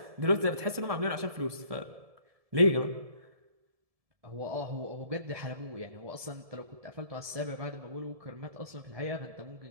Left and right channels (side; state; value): left; late; 1.7 ms